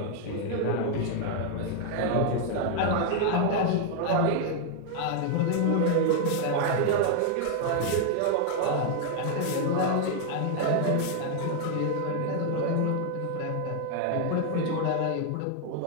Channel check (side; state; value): both; different; correlation 0.00